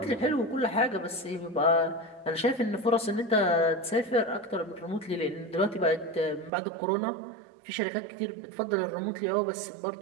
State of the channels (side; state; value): left; drops out; at 6.5 s